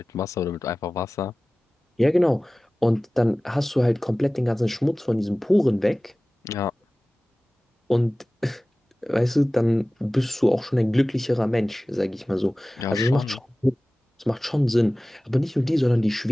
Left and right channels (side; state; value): both; normal; correlation 0.97